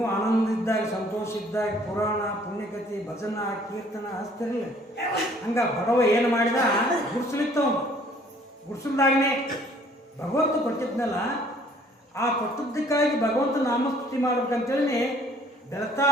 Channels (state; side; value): normal; both; correlation 0.58